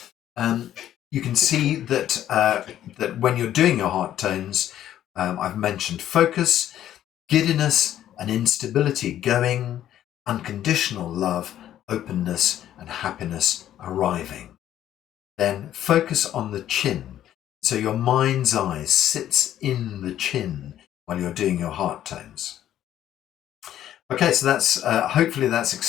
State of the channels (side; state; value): right; quieter; 11.7 dB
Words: you can see that that when you're doing your heart tones, I've mentioned focus, giddiness, and instability going, unconditional love, openness, and happiness arriving. Then focus on the chin. So your mind's eye sits in the chin while you're doing your heart tones. Okay, so that's hopefully that's